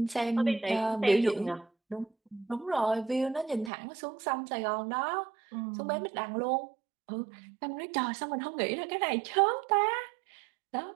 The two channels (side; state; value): left; drops out; at 3.7 s